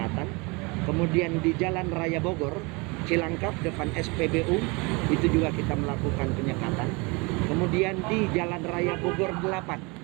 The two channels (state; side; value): quieter; left; 27.9 dB